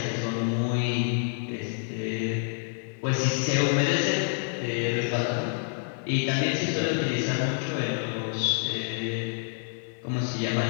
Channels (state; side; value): silent; right; 60 dB below the other